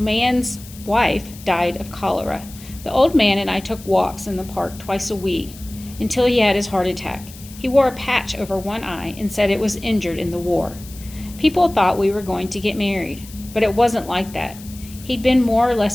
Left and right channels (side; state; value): left; noise; hiss, 18 dB below the sound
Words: wife died of cholera. The old man and I took walks in the park twice a week until he had his heart attack. He wore a patch over one eye and said it was injured in the war. People thought we were going to get married, but it wasn't like that. He'd been more or